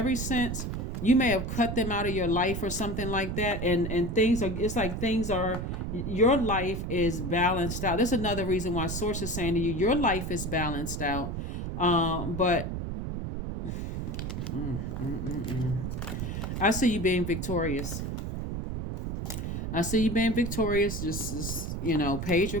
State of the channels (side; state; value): right; noise; rumble, 4 dB below the sound